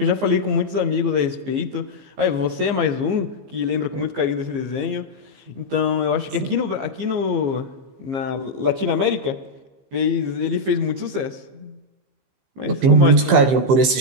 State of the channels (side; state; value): left; late; 15 ms